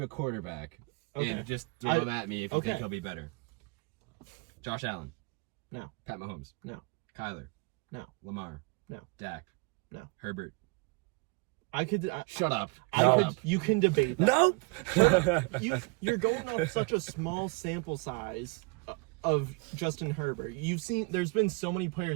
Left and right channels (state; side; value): quieter; left; 29.4 dB